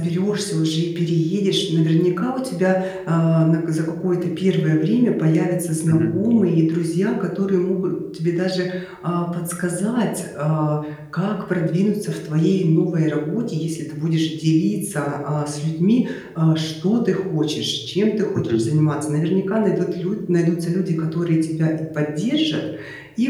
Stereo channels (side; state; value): both; identical; correlation 1.00